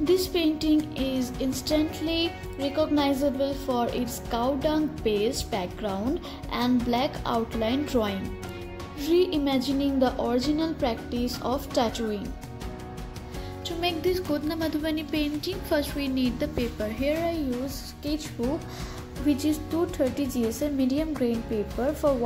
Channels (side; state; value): both; identical; correlation 1.00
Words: painting is instantly recognizable for its cow dung based background and black outline drawing, reimagining the original practice of tattooing. To make this Godna Madhubani painting, first we need the paper. Here I use sketchbook, which is 230 GSM medium grain paper for